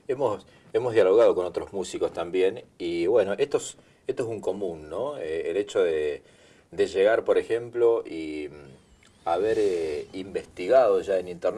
Hemos dialogado con otros músicos también, y bueno, esto es un común, ¿no? El hecho de llegar, por ejemplo, y haber investigado ya en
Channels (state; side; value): identical; both; correlation 1.00